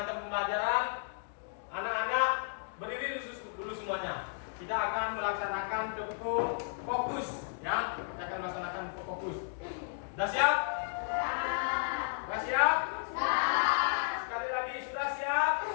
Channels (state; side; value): silent; right; digital silence